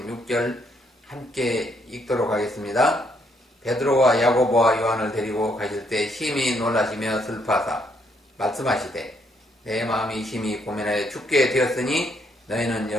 함께 읽도록 하겠습니다. 베드로와 야고보와 요한을 데리고 가실 때 심히 놀라시며 슬퍼하사 말씀하시되 내 마음이 심히 고민하여 죽게 되었으니 너희는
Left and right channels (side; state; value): both; normal; correlation 0.72